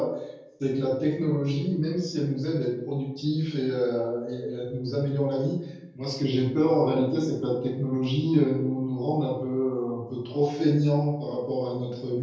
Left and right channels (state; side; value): identical; both; correlation 1.00